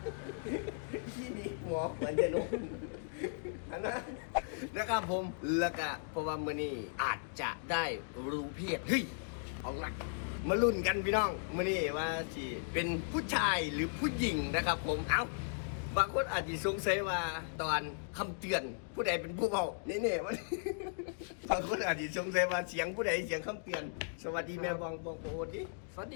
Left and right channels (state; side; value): silent; right; digital silence